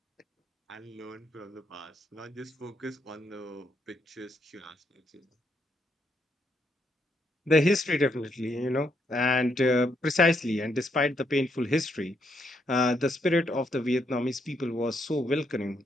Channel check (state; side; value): normal; both; correlation 0.76